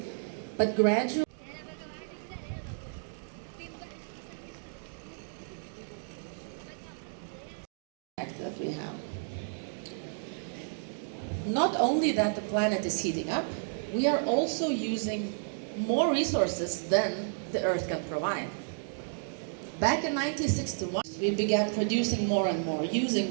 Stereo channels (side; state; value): left; silent; digital silence